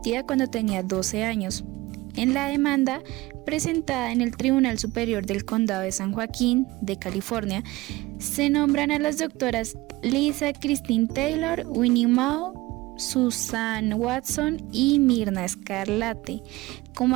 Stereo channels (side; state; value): left; quieter; 20.2 dB